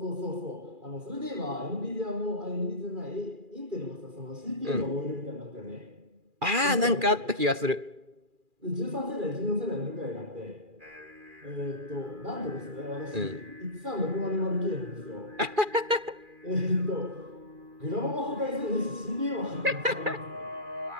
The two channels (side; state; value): left; late; 2.4 ms